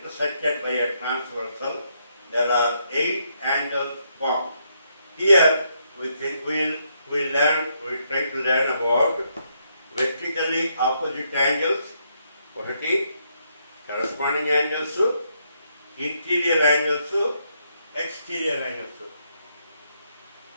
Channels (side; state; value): both; inverted; correlation -0.76